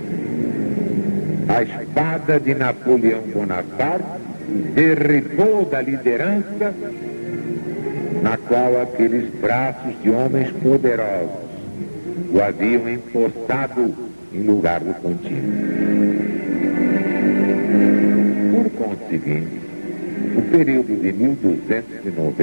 a espada de Napoleão Bonaparte derribou da liderança na qual aqueles braços de homens poderosos o haviam impostado em lugar do contínuo. Por conseguinte, o período de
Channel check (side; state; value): both; inverted; correlation -1.00